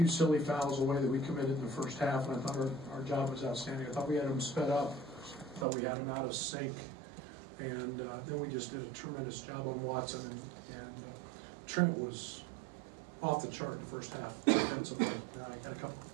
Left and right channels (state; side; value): drops out; left; at 5.7 s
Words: silly fouls away that we committed in the first half, and I thought our job was outstanding. I thought we had them sped up. I thought we had them out of sync. And then we just did a tremendous job on Watson. And Trent was off the chart in the first half defensively. Got a